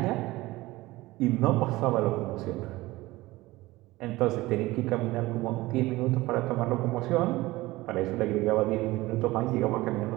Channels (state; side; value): quieter; left; 19.3 dB